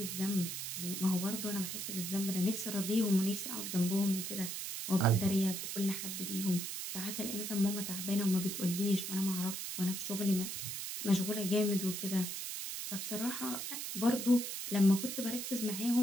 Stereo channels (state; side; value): noise; right; hiss, 5 dB below the sound